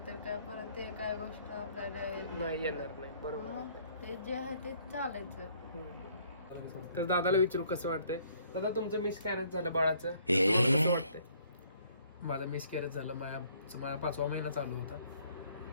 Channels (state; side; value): inverted; both; correlation -0.62